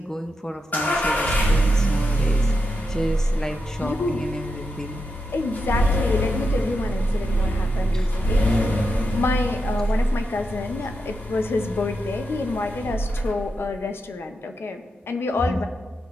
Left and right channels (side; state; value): both; normal; correlation 0.86